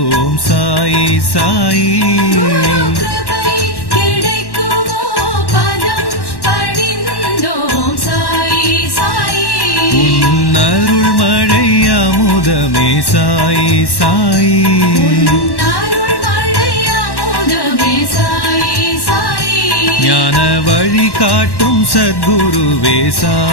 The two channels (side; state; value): right; late; 1.1 ms